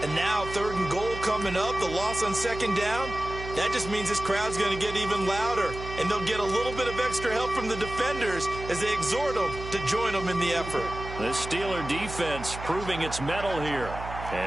And now 3rd and goal coming up. The loss on second down. That just means this crowd's going to get even louder. And they'll get a little bit of extra help from the defenders as they exhort them to join them in the effort. The Steeler defense proving its mettle here.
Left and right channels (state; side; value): noise; right; hum, 10 dB below the sound